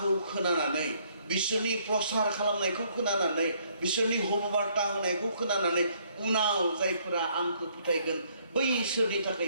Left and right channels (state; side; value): inverted; both; correlation -0.66